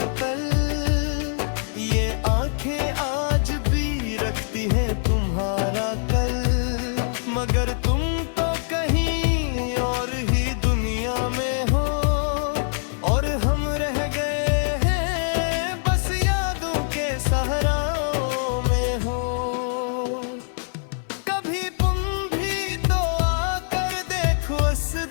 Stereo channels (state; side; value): silent; right; 59 dB below the other